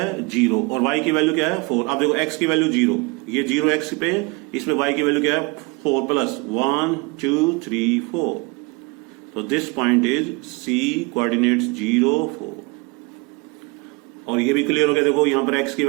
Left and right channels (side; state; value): left; quieter; 27.4 dB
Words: 0 और y की वैल्यू क्या है 4। अब देखो x की वैल्यू 0, ये 0 x पे, इसमें y की वैल्यू क्या है 4 प्लस 1 2 3 4। तो this point is C, coordinates 0 4। और ये भी क्लियर हो गया। देखो यहां पर x की